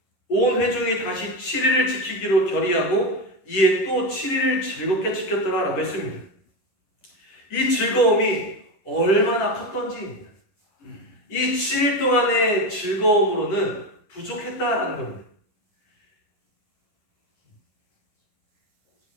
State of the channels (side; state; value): right; late; 11 ms